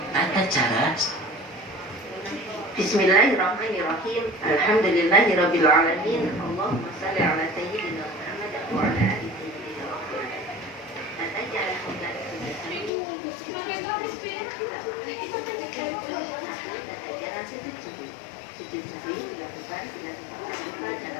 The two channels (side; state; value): right; drops out; at 12.9 s